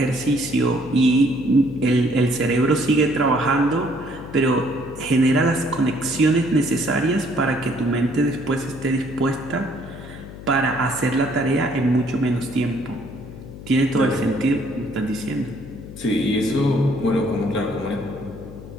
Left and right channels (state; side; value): noise; left; hum, 14 dB below the sound